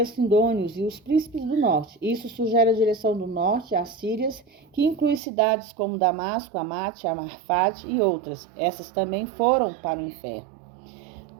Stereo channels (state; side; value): drops out; left; at 5.2 s